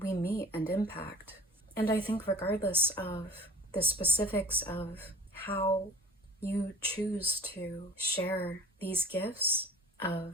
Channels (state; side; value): normal; both; correlation 0.44